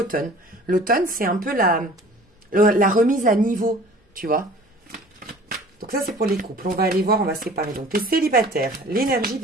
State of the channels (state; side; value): normal; both; correlation 0.47